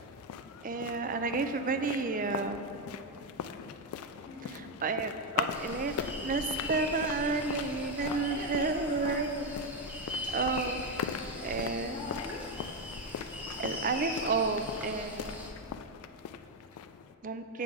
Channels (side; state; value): both; normal; correlation 0.07